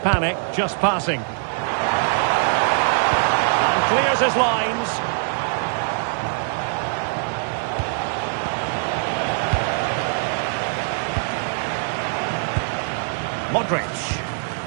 just passing. And clears his lines. Modric.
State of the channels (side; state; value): left; silent; digital silence